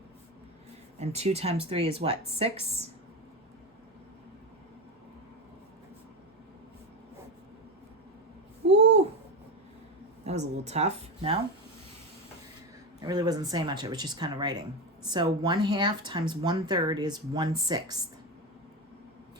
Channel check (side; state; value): both; normal; correlation 0.17